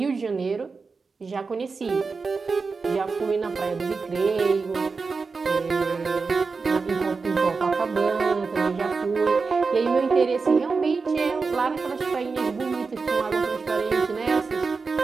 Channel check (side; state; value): left; quieter; 4.6 dB